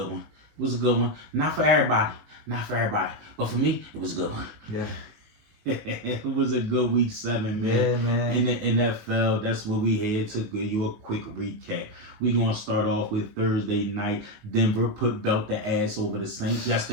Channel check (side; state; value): left; late; 19 ms